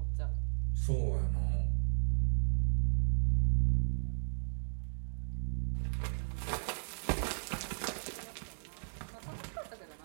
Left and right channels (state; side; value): silent; left; digital silence